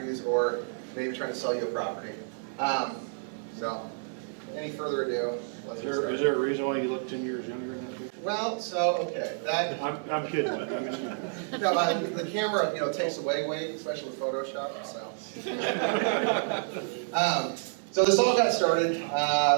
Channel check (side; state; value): left; silent; 58 dB below the other